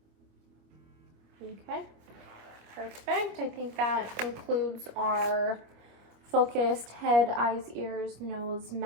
Okay, perfect. I think that concludes our focused head, eyes, ears, nose,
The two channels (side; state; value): left; late; 26 ms